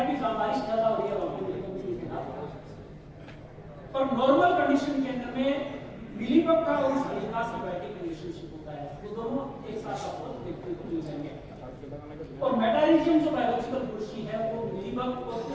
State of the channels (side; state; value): both; identical; correlation 1.00